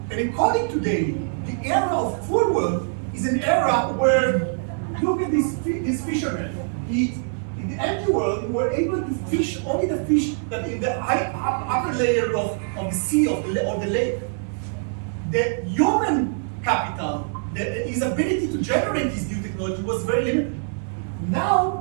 And according to Daly, the era of full world is an era where, look at this fisherman. In the empty world, we were able to fish only the fish that in the upper layer of the sea or the lake. The human capital, his ability to generate this new technology was very limited.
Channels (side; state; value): left; silent; digital silence